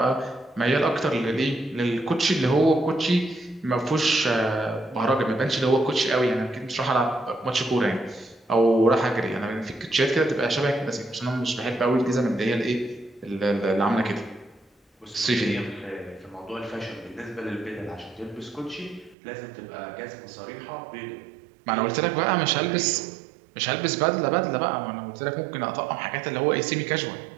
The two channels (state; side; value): drops out; left; at 19.2 s